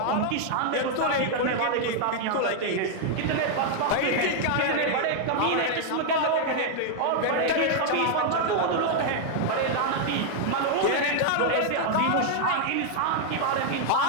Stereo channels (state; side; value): different; both; correlation 0.00